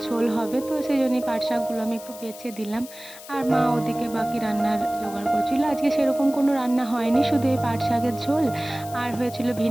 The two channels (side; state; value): left; noise; hiss, 16 dB below the sound